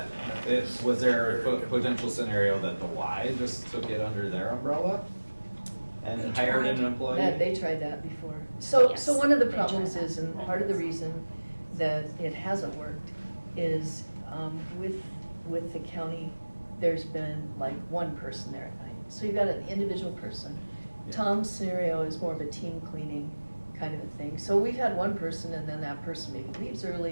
was there a potential scenario that the Y just took it under their umbrella and They hired tried. an employee? They tried that before. So Yes, one of the they tried problems that. is, and part of the reason that it hasn't worked is with the county, there's been like one person there at night. So you've got an individual person. Yeah. Tom's scenario is more of a team cleaning kind of a thing. So we've had one person, and then that person maybe leaves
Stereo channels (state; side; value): inverted; both; correlation -1.00